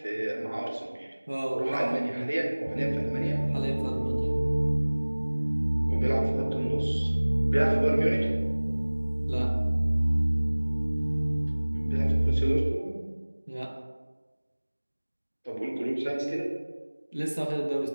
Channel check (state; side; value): inverted; both; correlation -1.00